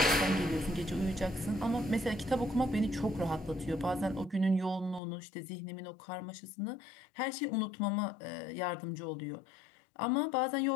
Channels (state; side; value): drops out; right; at 5.0 s